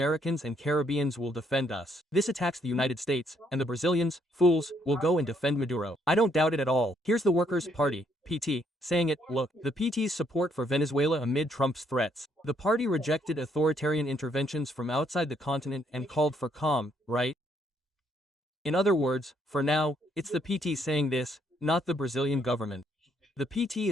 and Caribbeans will defend us. This attacks the United States, and the Brazilians, fools, will go and defend Maduro. I don't doubt it at all. Here's the Workers' Party, PT, saying it, look, the PT's support for Venezuela amid Trump's threats. The party rejected authoritarian interventions from outside the continent and called for calm, right? In other words, for now, it's the PT saying this, not the Brazilian government. The PT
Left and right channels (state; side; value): normal; both; correlation 0.70